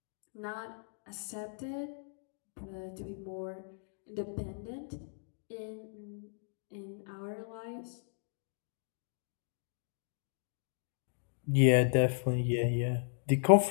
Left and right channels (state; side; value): silent; right; digital silence